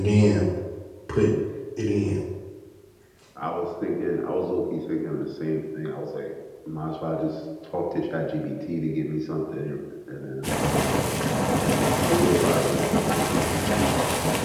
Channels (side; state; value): both; identical; correlation 1.00